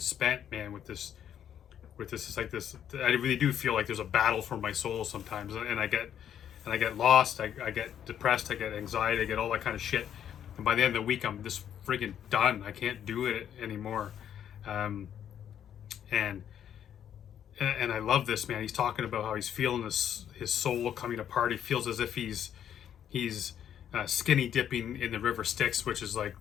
man, with this. It's like this. I really do feel like there's a battle for my soul sometimes, and I get lost. I get depressed. I get anxiety. I get all that kind of shit. And by the end of the week, I'm just friggin' done. I can't do it anymore. And I love this, man. He's talking about how he's feeling his soul coming apart. He feels as if he's skinny dipping in the river Styx, which is like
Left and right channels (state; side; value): quieter; right; 9.6 dB